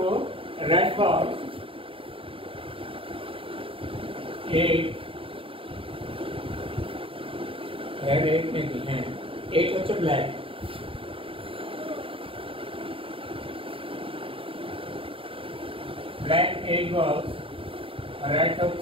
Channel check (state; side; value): late; left; 0.26 ms